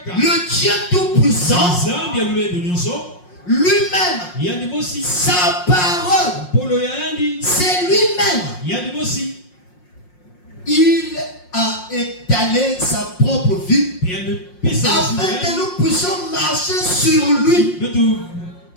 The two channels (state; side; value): late; right; 5.6 ms